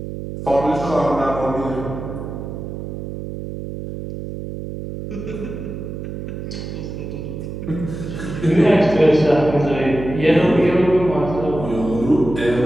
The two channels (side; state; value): right; noise; hum, 8 dB below the sound